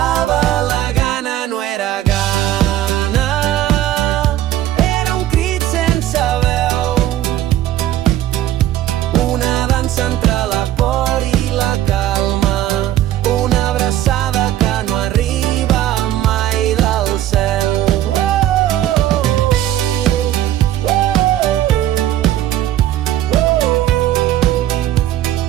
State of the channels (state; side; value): quieter; left; 13.0 dB